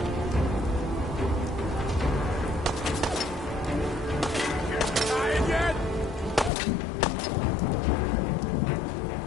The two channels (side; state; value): right; drops out; at 6.5 s